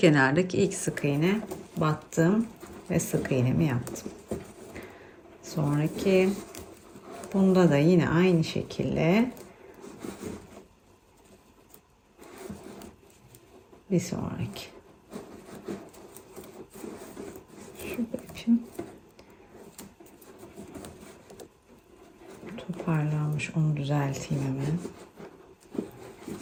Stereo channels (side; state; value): both; identical; correlation 1.00